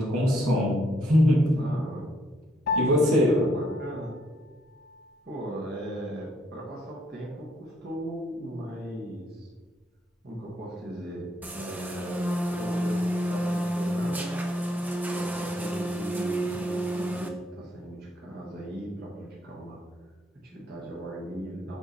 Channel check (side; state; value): both; normal; correlation 0.72